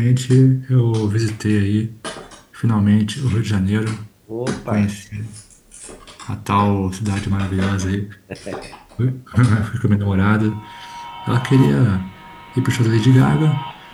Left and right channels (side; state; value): both; identical; correlation 1.00